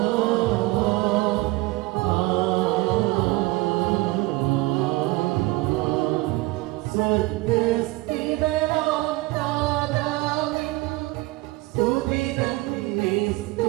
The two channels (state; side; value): quieter; left; 20.6 dB